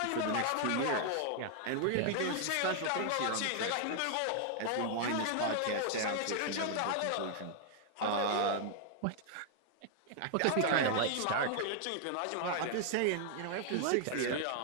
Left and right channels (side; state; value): both; different; correlation 0.00